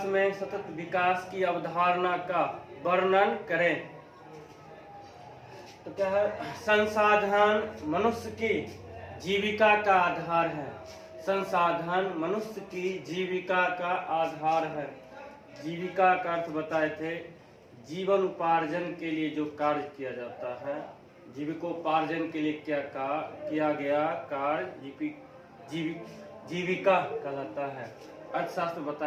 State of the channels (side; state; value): both; identical; correlation 1.00